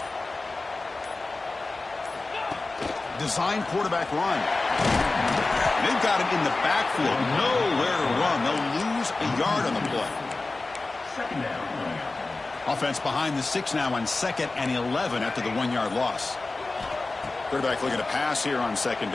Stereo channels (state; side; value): quieter; right; 3.4 dB